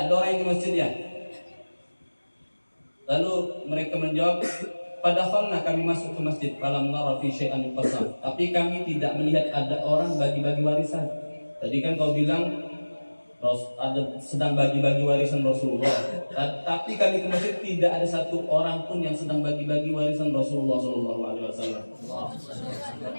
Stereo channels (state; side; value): inverted; both; correlation -1.00